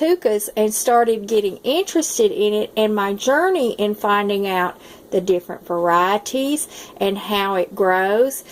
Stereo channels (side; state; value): both; identical; correlation 1.00